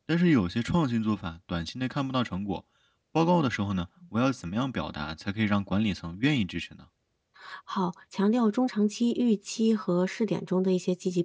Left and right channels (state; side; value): identical; both; correlation 1.00